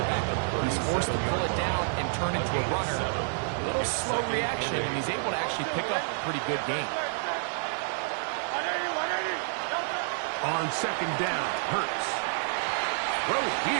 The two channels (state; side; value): silent; left; digital silence